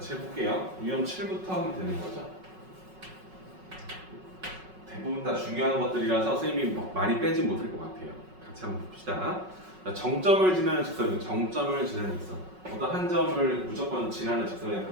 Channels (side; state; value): left; late; 5.4 ms